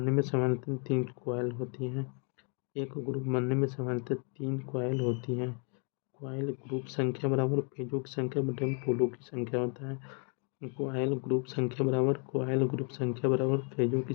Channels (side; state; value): right; quieter; 39.0 dB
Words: में सामान्यतः 3 कॉइल होती हैं। कॉइल ग्रुप संख्या बराबर पेजों की संख्या बटे में पोलों की संख्या होता है। कॉइल ग्रुप संख्या बराबर पेजों की